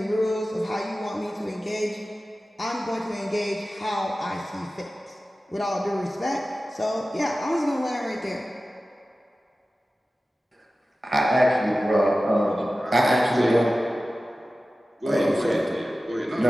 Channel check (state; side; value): normal; both; correlation 0.95